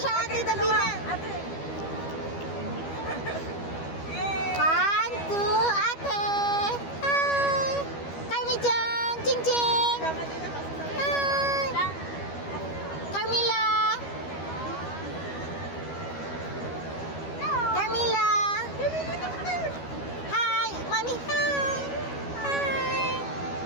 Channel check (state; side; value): late; right; 12 ms